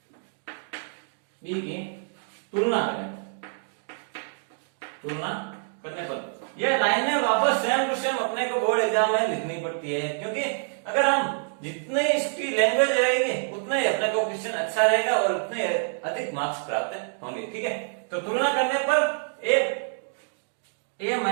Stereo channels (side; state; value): left; silent; digital silence